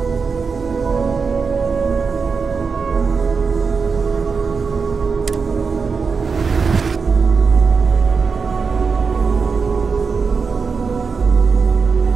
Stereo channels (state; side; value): quieter; left; 5.2 dB